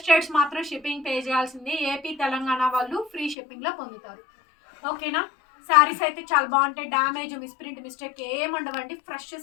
స్టేట్స్ మాత్రం షిప్పింగ్ పే చేయాల్సింది. ఏపీ తెలంగాణ వాళ్ళు ఫ్రీ షిప్పింగ్లో పొందుతారు. ఓకేనా? శారీస్ అయితే చాలా బాగుంటాయి. డ్యామేజ్, మిస్ప్రింట్, మిస్టేక్ ఏముండవండి. ఫ్రెష్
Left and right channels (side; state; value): right; drops out; at 3.4 s